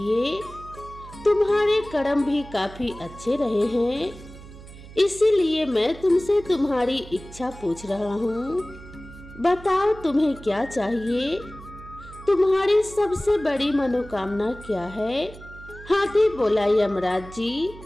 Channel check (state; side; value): noise; right; hum, 17 dB below the sound